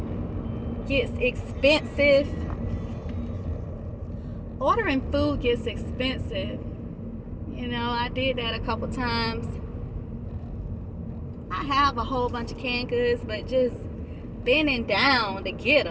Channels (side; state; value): both; identical; correlation 1.00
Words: gets expensive. Ordering food gets expensive. You know, I did that a couple times. I have a whole bunch of canned goods, but just bending down to get